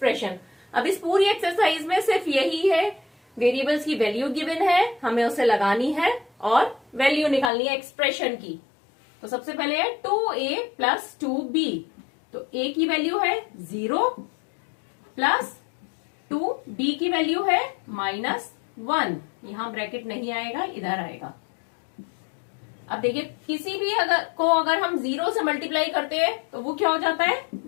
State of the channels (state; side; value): drops out; right; at 7.5 s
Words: अब इस पूरी एक्सरसाइज में सिर्फ यही है, वेरिएबल्स की वैल्यू गिवन है, हमें उसे लगानी है और वैल्यू निकालनी है एक्सप्रेशन की। तो सबसे पहले है 2a + 2b, तो a की वैल्यू है 0 प्लस 2b की वैल्यू है -1, यहां ब्रैकेट नहीं आएगा, इधर आएगा। अब देखिए किसी भी अगर हम 0 से मल्टीप्लाई करते हैं तो वो क्या हो जाता है,